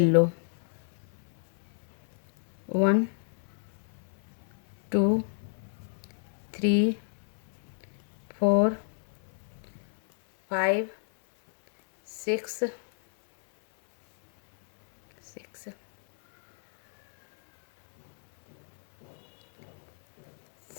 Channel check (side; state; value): right; silent; 58 dB below the other